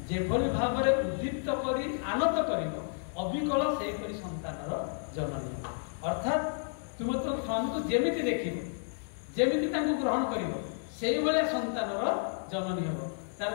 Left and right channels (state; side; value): silent; right; 57 dB below the other